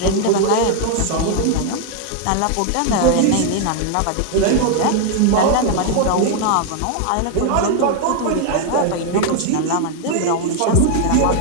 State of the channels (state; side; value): different; both; correlation 0.00